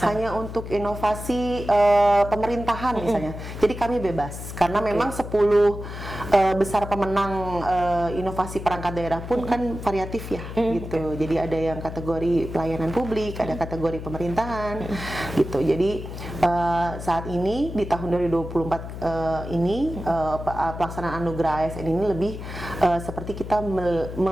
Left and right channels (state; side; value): noise; left; hum, 9 dB below the sound